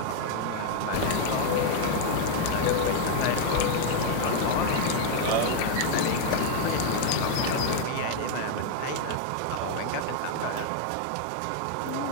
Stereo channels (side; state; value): both; different; correlation 0.00